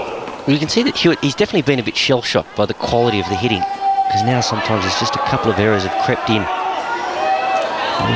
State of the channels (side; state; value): both; identical; correlation 1.00